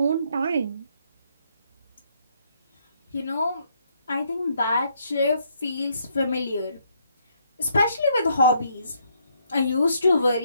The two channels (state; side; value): inverted; both; correlation -0.72